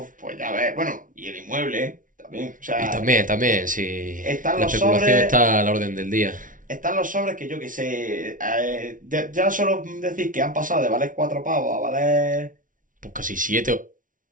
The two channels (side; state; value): left; late; 0.38 ms